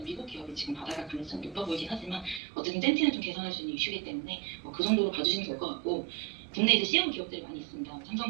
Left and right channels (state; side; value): drops out; left; at 2.4 s